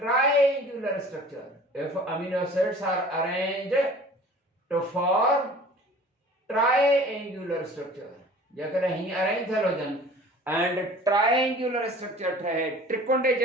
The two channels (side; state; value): both; normal; correlation 0.45